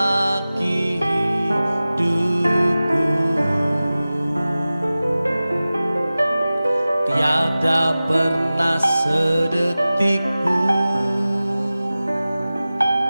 hidupku. Tiada pernah sedetik pun,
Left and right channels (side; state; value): both; inverted; correlation -0.96